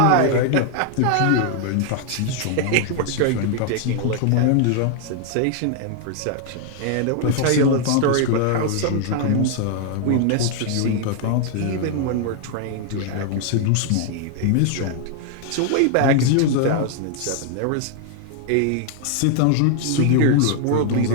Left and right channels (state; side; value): different; both; correlation 0.00